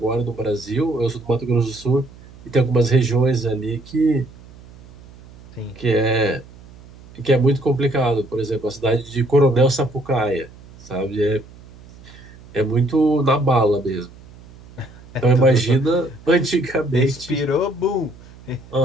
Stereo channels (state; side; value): noise; right; hum, 21 dB below the sound